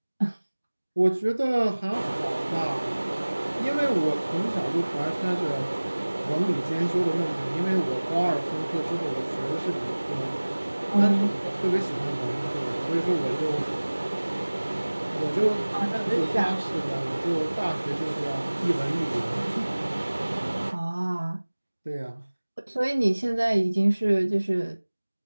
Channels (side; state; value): both; inverted; correlation -1.00